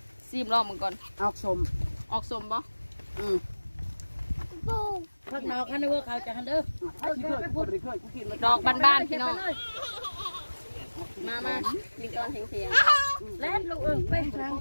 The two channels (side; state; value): both; inverted; correlation -1.00